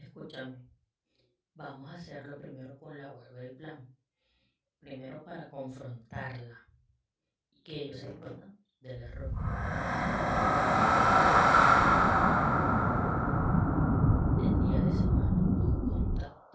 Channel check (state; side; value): identical; both; correlation 1.00